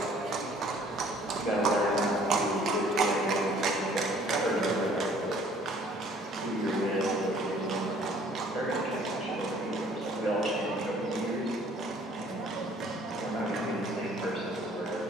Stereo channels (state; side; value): normal; both; correlation 0.56